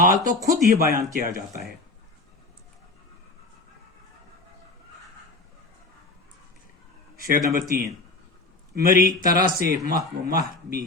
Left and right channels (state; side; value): quieter; right; 3.2 dB